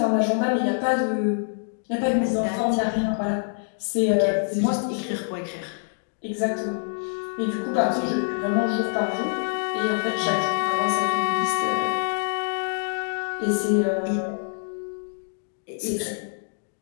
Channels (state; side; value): silent; right; digital silence